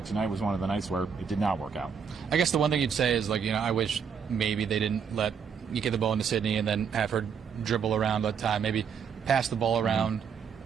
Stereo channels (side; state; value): left; quieter; 6.8 dB